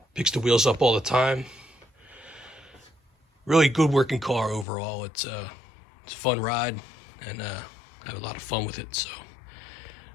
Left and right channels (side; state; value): right; drops out; at 4.7 s